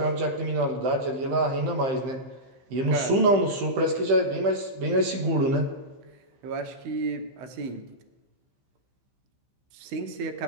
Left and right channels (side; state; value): left; late; 15 ms